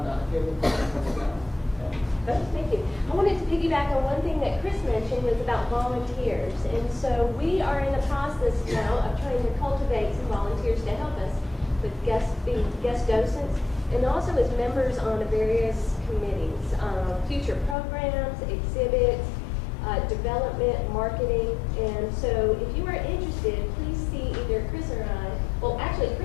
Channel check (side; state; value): right; drops out; at 17.8 s